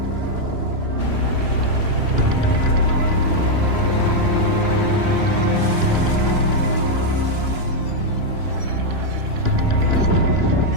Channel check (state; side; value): late; left; 3.0 ms